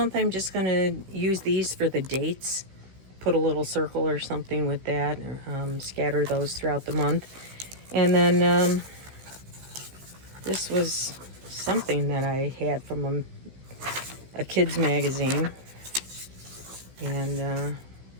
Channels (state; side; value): late; left; 16 ms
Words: I'm just going to use these for the dates. Put a little circle or something with that, or scatter those throughout the month. And then this was something that I had from a kid's magazine. And